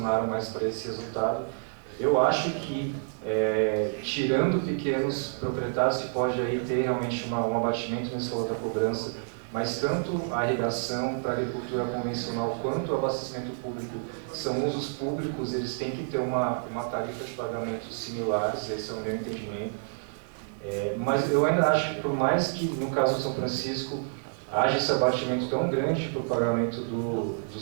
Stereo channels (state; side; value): silent; left; digital silence